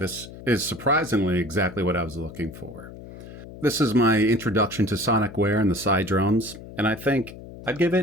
is surprisingly exactly what I was looking for. This is my introduction to Sonicware and the CyDrums, and I think I'd give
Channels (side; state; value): left; noise; hum, 15 dB below the sound